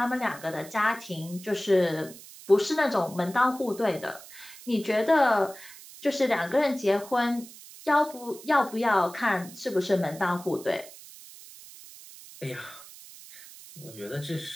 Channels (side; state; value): right; noise; hiss, 18 dB below the sound